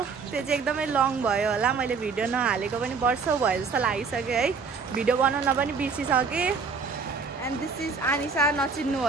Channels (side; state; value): left; quieter; 5.1 dB